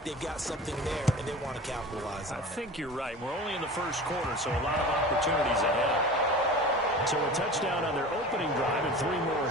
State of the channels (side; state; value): both; normal; correlation 0.36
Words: they've got something there, and they want to capitalize on it. I think you're right. We're only in the 1st quarter, so a lot of opportunities ahead. So a touchdown on their opening drive and 3 more